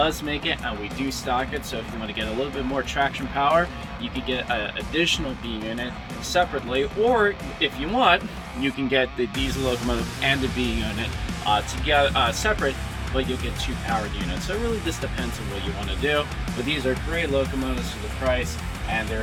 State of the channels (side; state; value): both; identical; correlation 1.00